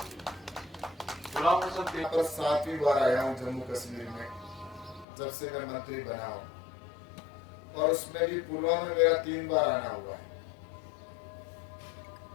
गुलाम हसन तेगी पर 7वीं बार आया हूँ जम्मू कश्मीर में जब से मैं मंत्री बना हूँ, और उसमें भी पुलवामा में मेरा 3 बार आना हुआ है।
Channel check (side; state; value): right; drops out; at 5.1 s